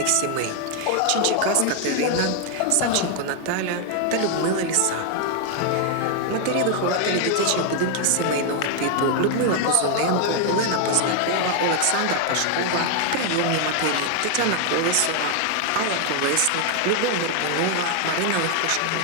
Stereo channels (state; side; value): different; both; correlation 0.00